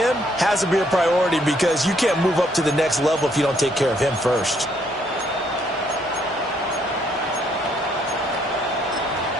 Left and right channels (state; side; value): normal; both; correlation 0.69